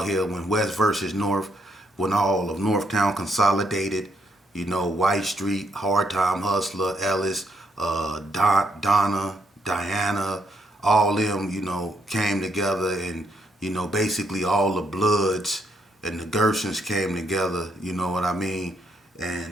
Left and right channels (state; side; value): normal; both; correlation 0.74